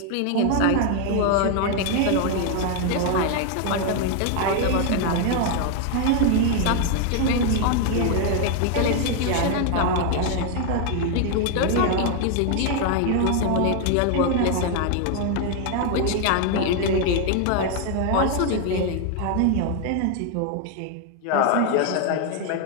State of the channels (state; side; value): different; both; correlation 0.01